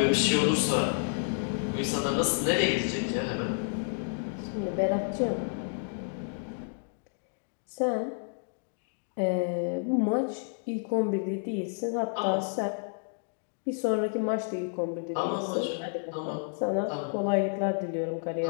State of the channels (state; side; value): silent; right; digital silence